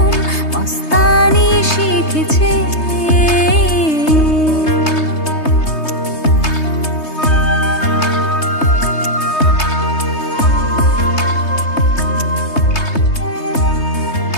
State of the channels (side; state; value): right; late; 3.2 ms